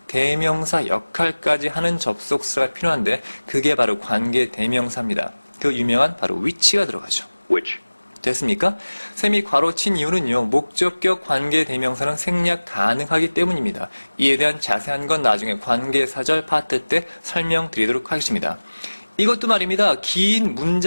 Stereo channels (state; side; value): inverted; both; correlation -1.00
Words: 대명사 역할까지 하는 접속사가 필요한데 그게 바로 관계 대명사입니다. 그 유명한 바로 which가 들어가죠. Which. 됐습니까? 셈이 괄호친 이유는요. 목적격 관계 대명사는 생략 가능하기 때문입니다. 이에 대한 자세한 건 나중에 관계사절 파트 때 설명드리도록 하겠습니다. 이것도 말입니다. 긴